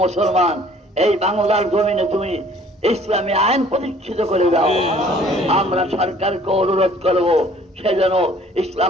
মুসলমান এই বাংলার জমিনে তুমি ইসলামী আইন প্রতিষ্ঠিত করে দাও। আমরা সরকারকে অনুরোধ করব সে যেন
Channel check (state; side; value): normal; both; correlation 0.55